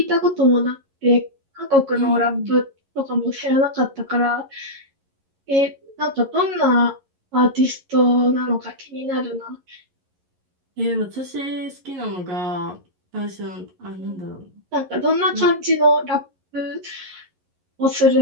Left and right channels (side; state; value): left; late; 11 ms